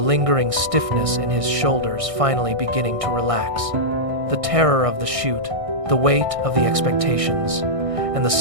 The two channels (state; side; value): late; left; 1.6 ms